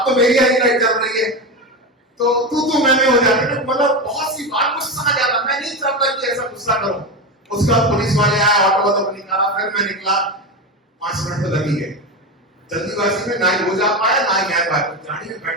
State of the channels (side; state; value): both; normal; correlation 0.18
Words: तो मेरी हरी लाइट चल रही है, तो तू मैं हो जाती है। मतलब बहुत सी बार गुस्सा आ जाता। मैं नहीं चाहता कि ऐसा गुस्सा करूं। उसके बाद पुलिस वाले आए, ऑटो वाला को निकाला, फिर मैं निकला। 5 मिनट तो लग ही गए। जल्दीबाजी में ना ही हो जा पाया ना ही मैं पाया। गाड़ी में